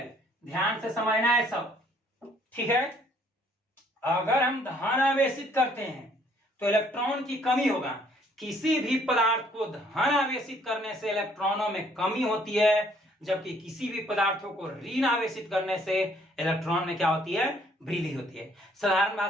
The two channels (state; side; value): normal; both; correlation 0.63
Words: ध्यान से समझना है सब। ठीक है, अगर हम धन आवेशित करते हैं तो इलेक्ट्रॉन की कमी होगा। किसी भी पदार्थ को धन आवेशित करने से इलेक्ट्रॉनों में कमी होती है, जबकि किसी भी पदार्थों को ऋण आवेशित करने से इलेक्ट्रॉन में क्या होती है? वृद्धि होती है। साधारण